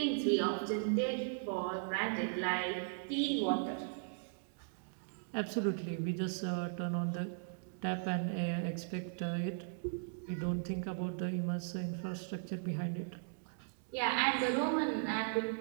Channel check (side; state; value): left; silent; digital silence